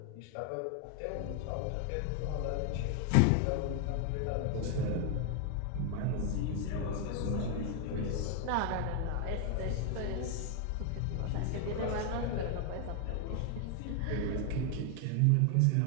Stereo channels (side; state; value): both; different; correlation 0.00